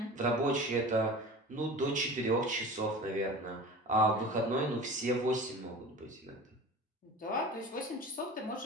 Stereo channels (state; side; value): normal; both; correlation 0.36